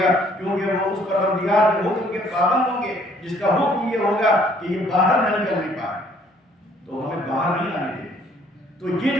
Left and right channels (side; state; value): both; normal; correlation 0.62